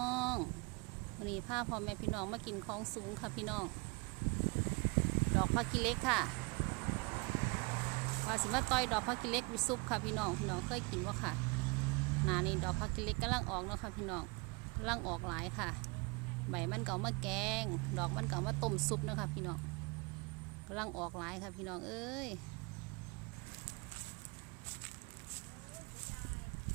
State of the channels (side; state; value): left; quieter; 29.5 dB